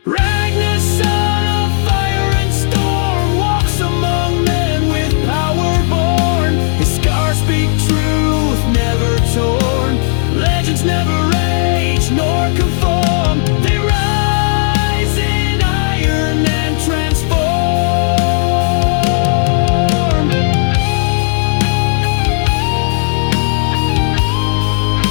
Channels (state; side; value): silent; right; 71 dB below the other